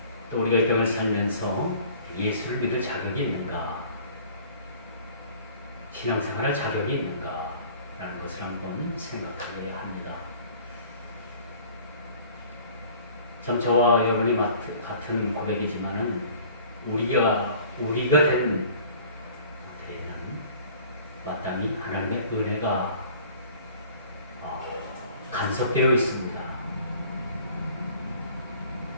또 우리가 이 땅을 살면서 예수를 믿을 자격이 있는가, 신앙생활할 자격이 있는가 라는 것을 한번 생각하게 합니다. 참 저와 여러분이 같은 고백이지만은 우리가 된 데에는 마땅히 하나님의 은혜가 간섭되어 있습니다.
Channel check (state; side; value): inverted; both; correlation -0.50